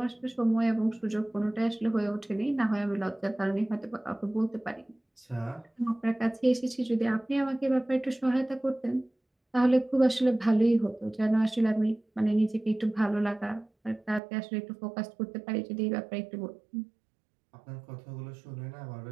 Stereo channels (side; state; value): left; drops out; at 14.2 s